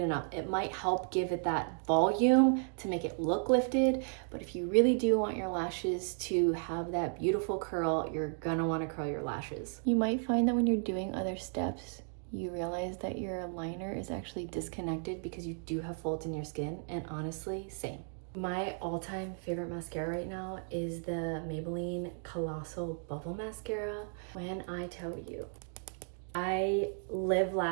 and up. It might help give it that volume to make it look lifted, but if you really do want your lashes to have that beautiful curl, you're gonna want to curl your lashes. You might find that when you're doing other steps, you realize that your liner is actually disconnected because you do have folds in your skin, and honestly, same. My all-time favorite mascara right now is the Maybelline Colossal Bubble Mascara. When I tell you, I live,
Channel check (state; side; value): silent; left; 55 dB below the other